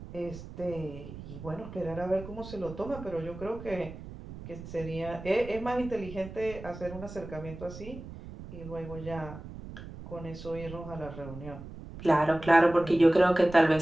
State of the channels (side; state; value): right; noise; rumble, 13 dB below the sound